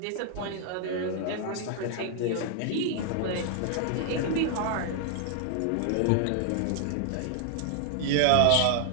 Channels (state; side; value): different; both; correlation 0.00